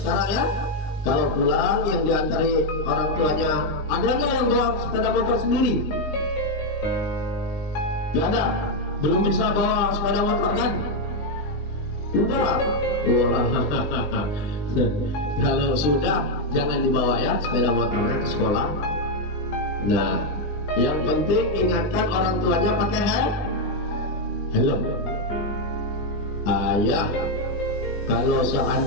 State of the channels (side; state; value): right; late; 20 ms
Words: ya. Kalau pulang yang diantari orang tuanya, ada nggak yang bawa sepeda motor sendiri? Gak ada. Belum bisa bawa sepeda motor kan? Udah. Wah. Kalau sudah jangan dibawa ya sepeda motornya ke sekolah. Nah, yang penting ingatkan orang tuanya pakai helm. Ayah, kalau